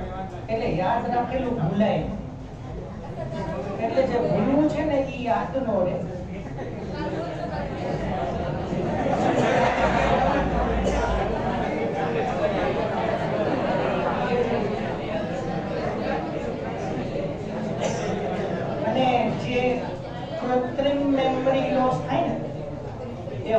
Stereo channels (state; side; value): identical; both; correlation 1.00